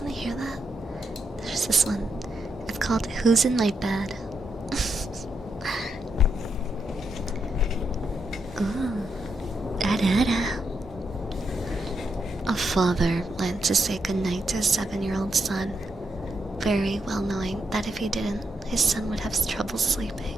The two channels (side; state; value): both; normal; correlation 0.82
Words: want to hear that? There's this one. It's called Who's in My Bed? Ooh. Da-da-da. A father went to say goodnight to his 7-year-old son, very well knowing that if he didn't, his son would have trouble sleeping.